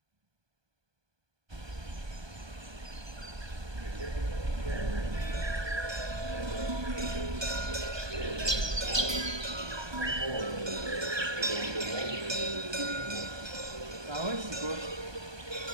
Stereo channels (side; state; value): left; late; 1.2 ms